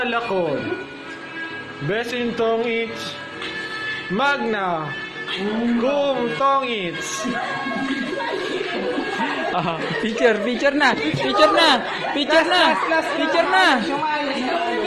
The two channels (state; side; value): identical; both; correlation 1.00